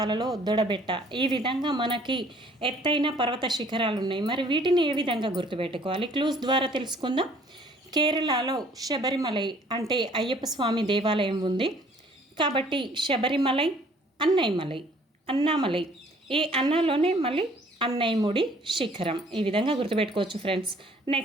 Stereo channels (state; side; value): normal; both; correlation 0.57